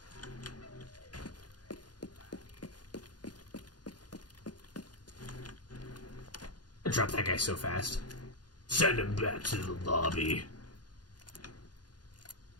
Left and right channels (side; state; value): right; late; 0.70 ms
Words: I dropped that guy so fast. Send him back to the lobby.